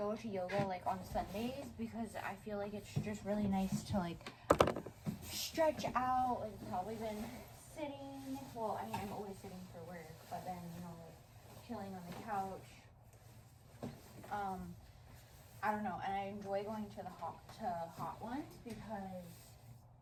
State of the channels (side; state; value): both; identical; correlation 1.00